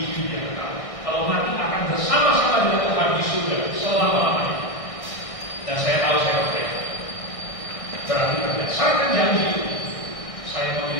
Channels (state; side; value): late; right; 1.6 ms